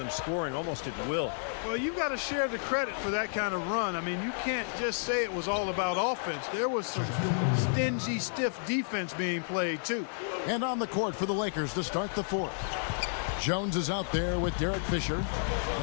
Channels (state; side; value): silent; right; digital silence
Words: scoring almost at will. Well, you've got to share the credit for that kind of run. I mean, you can't just say it was all about offense. There was some stingy, stiff defense being played, too. And on the court for the Lakers to start the 4th. Jones is out there with Derek Fisher.